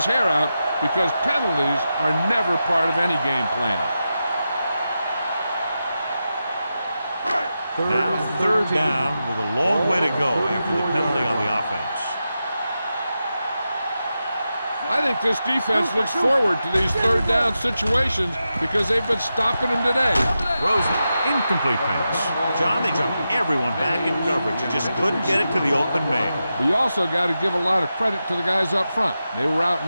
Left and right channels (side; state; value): both; inverted; correlation -0.90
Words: hair out because penalties are never part of any game plan. Now 3rd down with a long way to go after the penalty on the offense. I think this defense looks forward to these 3rd down situations because they've been stopping them today. Rosen, incomplete pass. John, they jumped everyone back in coverage. You just couldn't get it to the open man. We also got to give a lot of credit to the guys up front. They were